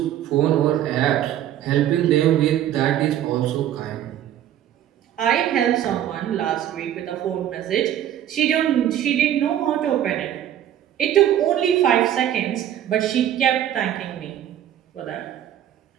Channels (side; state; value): left; quieter; 11.2 dB